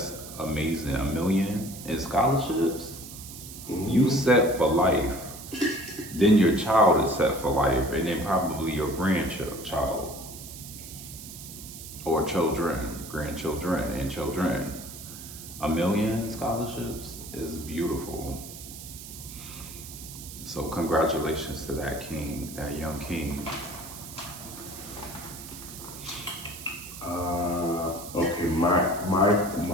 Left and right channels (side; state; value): right; noise; hiss, 13 dB below the sound